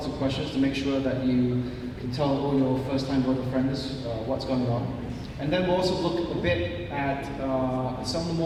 of questions to make sure that you can tell all your first-time voter friends what's going on. And then we'll also look a bit at some of the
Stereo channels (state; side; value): identical; both; correlation 1.00